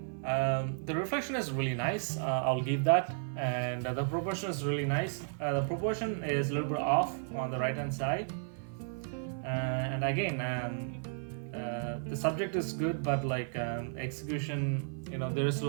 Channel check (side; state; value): left; silent; 55 dB below the other